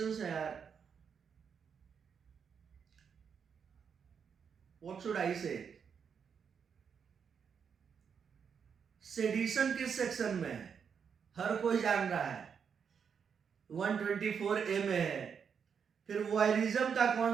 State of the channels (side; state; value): left; quieter; 6.8 dB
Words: है यार. What should I say? Sedition किस section में है? हर कोई जान रहा है, 124A में है. फिर वॉयरिज्म का कौन